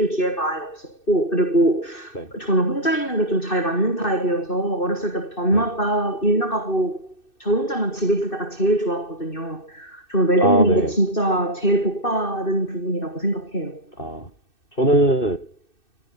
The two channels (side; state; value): right; late; 2.6 ms